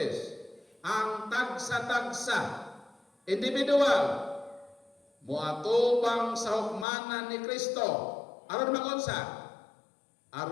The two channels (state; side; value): drops out; right; at 6.9 s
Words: Ang tagsa-tagsa individual moatubang sa hukmanan ni Kristo aron magunsa